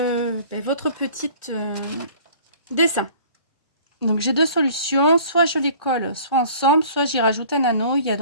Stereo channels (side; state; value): both; inverted; correlation -0.49